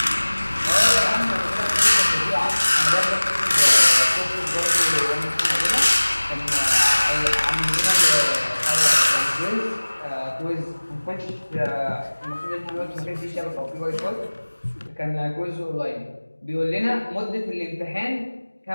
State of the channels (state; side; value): inverted; both; correlation -1.00